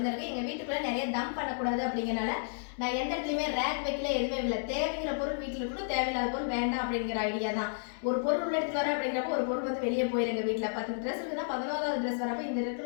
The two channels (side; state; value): right; silent; 57 dB below the other